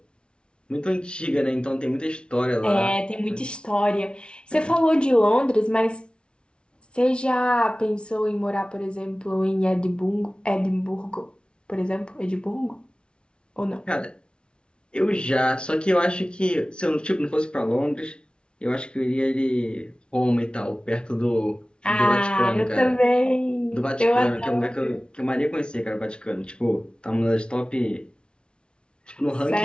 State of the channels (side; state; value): right; late; 0.057 ms